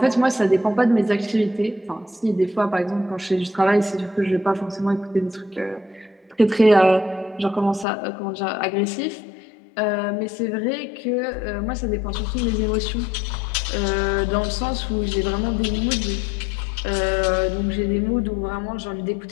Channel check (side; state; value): right; drops out; at 7.9 s